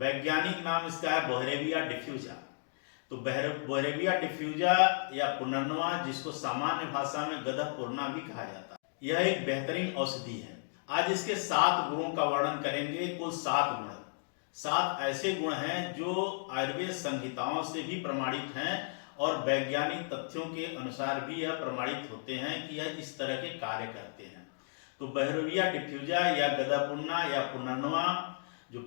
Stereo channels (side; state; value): right; silent; digital silence